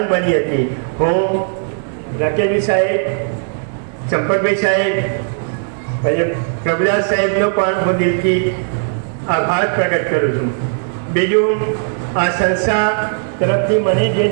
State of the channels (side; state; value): left; silent; 63 dB below the other